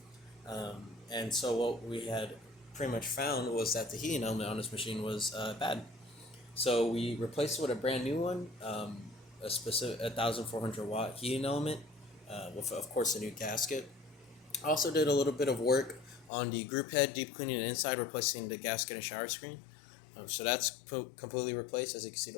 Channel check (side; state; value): right; drops out; at 16.3 s